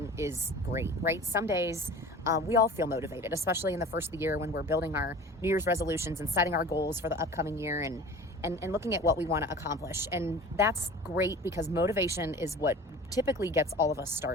is great, right? Some days we all feel motivated, especially in the first of the year when we're building our New Year's resolutions and setting our goals for the upcoming year and looking at what we want to accomplish. And that's great because motivation is what typically gets all of us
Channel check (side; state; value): both; normal; correlation 0.40